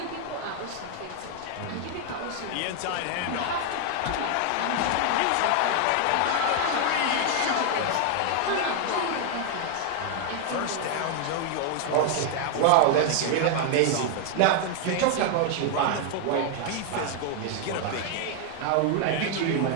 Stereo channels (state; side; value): different; both; correlation 0.00